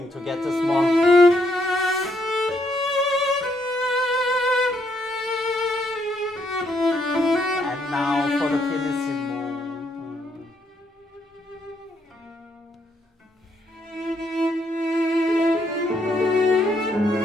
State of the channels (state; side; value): normal; both; correlation 0.74